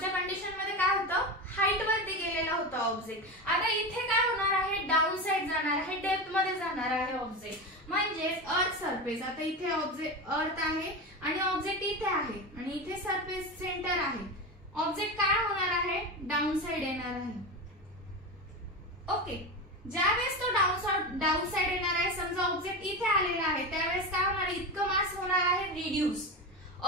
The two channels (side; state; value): both; normal; correlation 0.21